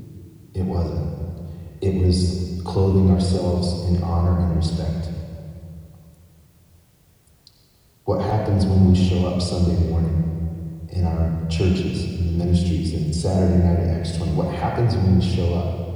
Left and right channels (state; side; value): identical; both; correlation 1.00